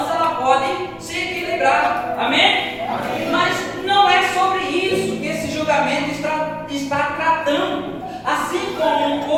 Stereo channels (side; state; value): both; identical; correlation 1.00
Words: ela pode se equilibrar. Amém? Mas não é sobre isso que esse julgamento está tratando. Assim como